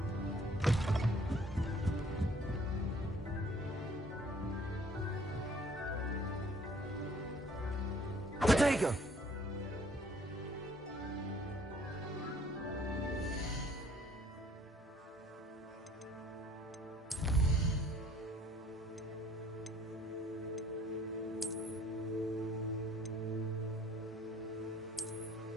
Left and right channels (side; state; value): both; normal; correlation 0.58